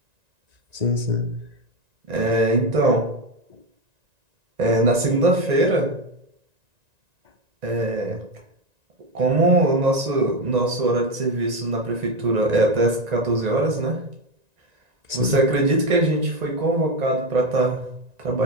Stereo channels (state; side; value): late; left; 1.9 ms